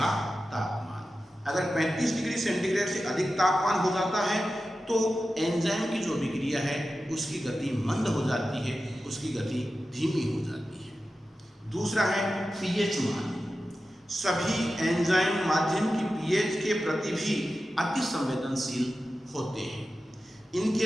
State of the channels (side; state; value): both; normal; correlation 0.93